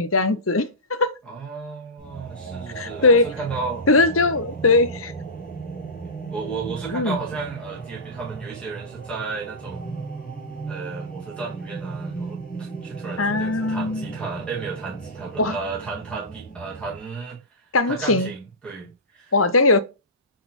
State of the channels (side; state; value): both; normal; correlation -0.17